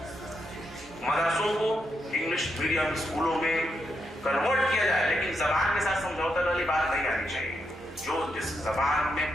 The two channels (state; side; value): normal; both; correlation 0.82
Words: मदरसों को इंग्लिश मीडियम स्कूलों में कन्वर्ट किया जाए, लेकिन जबान के साथ समझौते वाली बात नहीं आनी चाहिए। जो जिस जबान